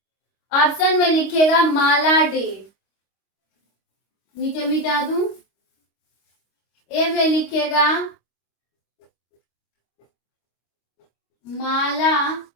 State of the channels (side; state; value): right; late; 25 ms